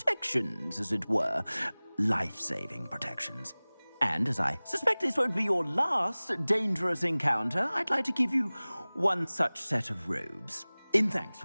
as it were. Life-saving protections. And as I suspect this won't be your last dangerous encounter, I'd like to give you one such set of robes, in thanks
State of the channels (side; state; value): both; inverted; correlation -1.00